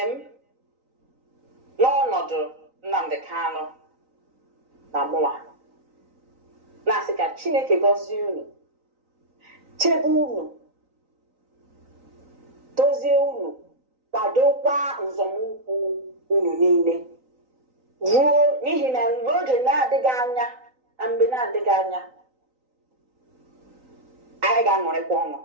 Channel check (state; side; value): late; left; 3.9 ms